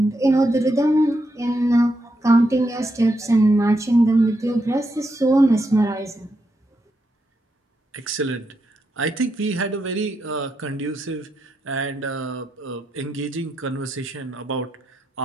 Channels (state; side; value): normal; both; correlation 0.82